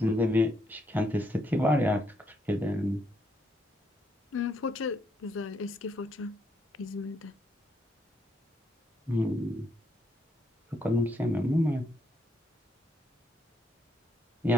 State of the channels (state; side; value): normal; both; correlation 0.75